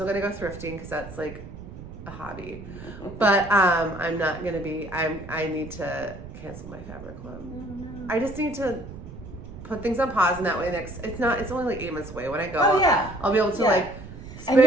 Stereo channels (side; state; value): right; noise; rumble, 13 dB below the sound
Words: gonna go thrifting because that's like a hobby. But I'm not gonna be. I need to cancel my fabric club. I just need to put things on pause, and that way it's only like 8 months away. When I go, I'll be able to like. And